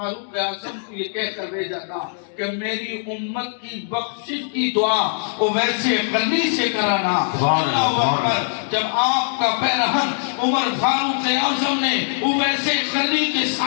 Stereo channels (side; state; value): right; silent; digital silence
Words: اعظم کو یہ کہہ کر بھیجا تھا کہ میری امت کی بخشش کی دعا اویس قرنی سے کرانا. اللہ اکبر, جب آپ کا پیرہن عمر فاروق اعظم نے اویس قرنی کے